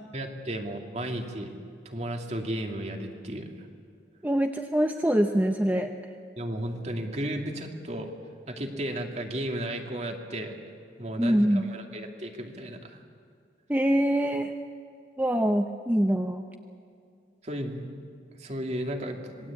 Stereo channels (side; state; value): both; normal; correlation 0.87